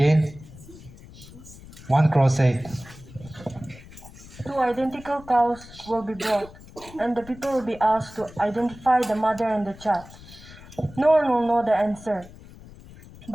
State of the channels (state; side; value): noise; left; rumble, 19 dB below the sound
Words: One crow said, Two identical cows will be brought, and the people will be asked to identify the mother and the child. No one will know the answer.